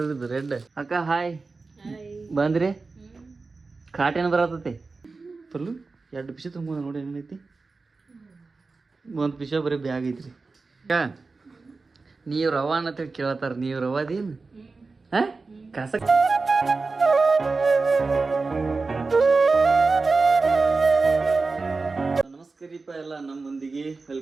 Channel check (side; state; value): left; quieter; 4.0 dB